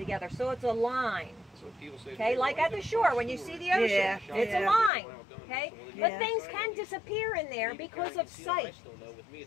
so it's a line. Okay, like at the shore when you see the ocean, it's a line. Okay, but things can disappear in there because of sight.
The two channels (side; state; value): right; drops out; at 4.9 s